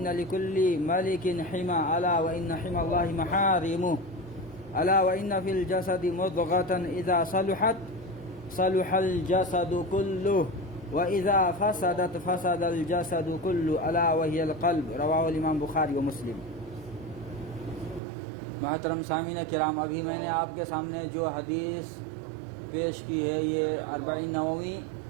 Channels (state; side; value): drops out; left; at 18.0 s